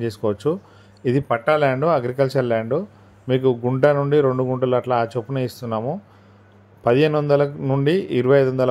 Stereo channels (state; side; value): identical; both; correlation 1.00